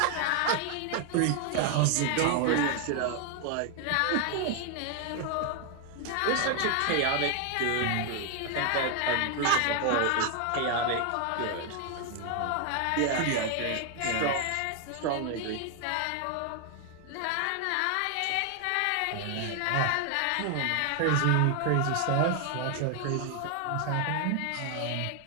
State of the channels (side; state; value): both; different; correlation 0.00